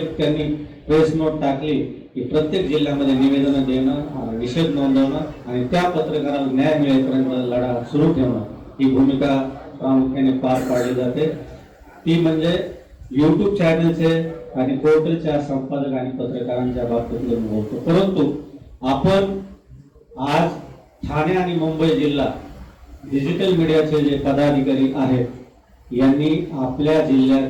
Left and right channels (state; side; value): identical; both; correlation 1.00